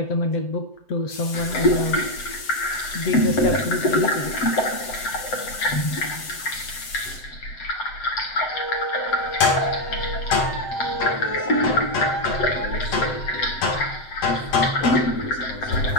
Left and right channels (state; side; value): late; right; 7.8 ms